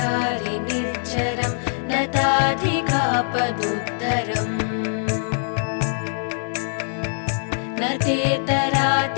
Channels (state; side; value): silent; right; digital silence